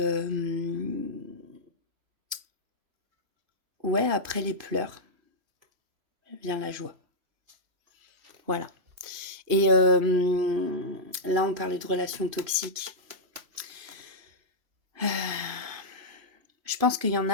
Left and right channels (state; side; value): late; left; 3.0 ms